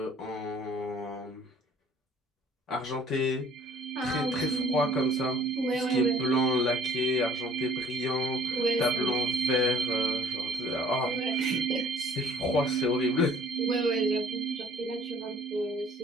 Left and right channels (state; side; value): normal; both; correlation 0.56